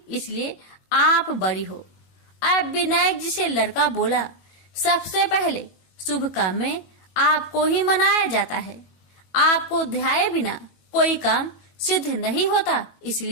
इसलिए आप बड़ी हो। अब विनायक जी से लड़का बोला, सबसे पहले शुभ काम में आपको ही मनाया जाता है। आपको ध्याये बिना कोई काम सिद्ध नहीं होता,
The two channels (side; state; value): right; late; 21 ms